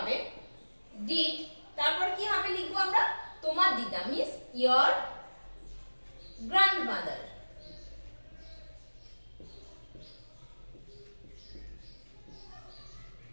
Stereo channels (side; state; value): both; inverted; correlation -1.00